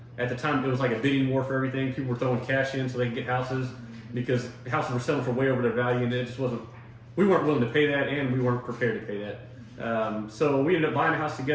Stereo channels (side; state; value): both; identical; correlation 1.00